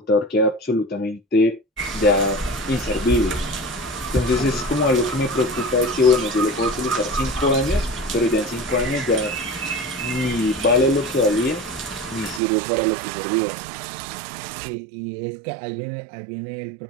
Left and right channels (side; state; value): left; drops out; at 12.4 s